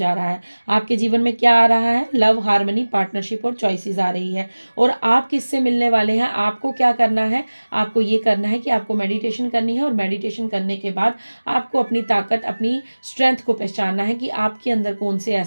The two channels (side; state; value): both; inverted; correlation -1.00